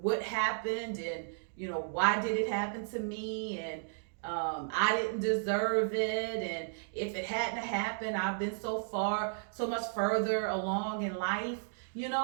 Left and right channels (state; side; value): silent; left; digital silence